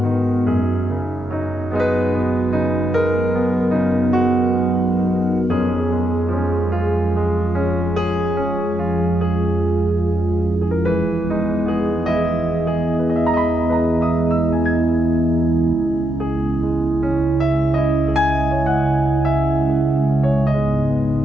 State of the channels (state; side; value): normal; both; correlation 0.82